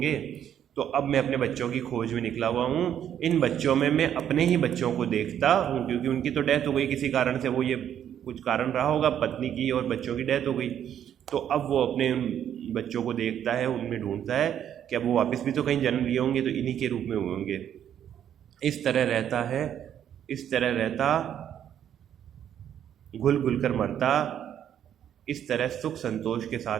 तो अब मैं अपने बच्चों की खोज में निकला हुआ हूँ। इन बच्चों में मैं अपने ही बच्चों को देखता हूँ, क्योंकि उनकी तो डेथ हो गई किसी कारण से, वो ये कुछ कारण रहा होगा, पत्नी की और बच्चों की डेथ हो गई। तो अब वो अपने उन बच्चों को देखता है, उनमें ढूंढता है कि अब वो वापस भी तो कहीं जन्म लिए होंगे, तो इन्हीं के रूप में हुए होंगे। इस तरह रहता है, इस तरह रहता, घुल घुल कर मरता, इस तरह सुख संतोष के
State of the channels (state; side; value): quieter; left; 9.8 dB